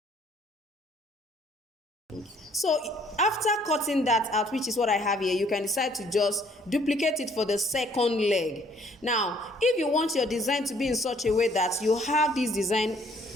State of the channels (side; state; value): both; normal; correlation 0.62